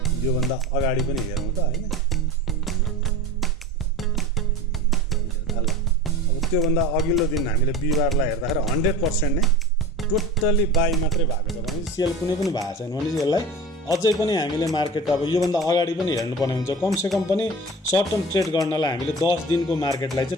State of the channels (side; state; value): both; normal; correlation 0.34